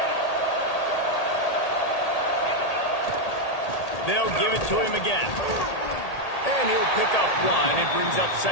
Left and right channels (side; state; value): right; late; 1.8 ms